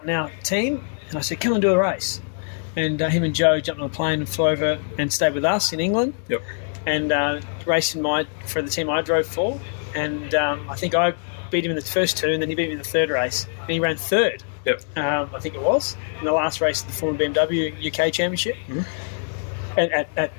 in our team, and I said, come and do a race. And him and Joe jumped on a plane and flew over and stayed with us in England. And raced for the team I drove for. And I think I beat him in the first two, and then he beat me in the third race. And he ran third, I think it was, in the last race of the Formula BMW UK Championship at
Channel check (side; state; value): right; silent; digital silence